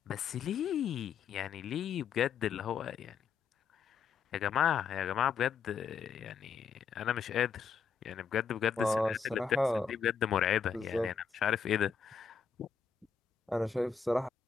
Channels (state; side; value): quieter; right; 6.4 dB